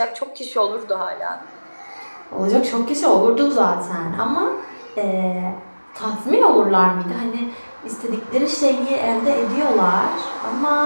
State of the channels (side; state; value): both; inverted; correlation -1.00